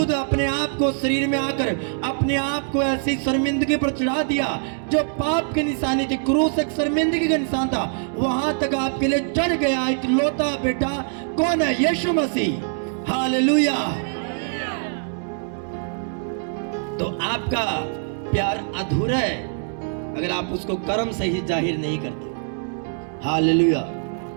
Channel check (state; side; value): silent; left; digital silence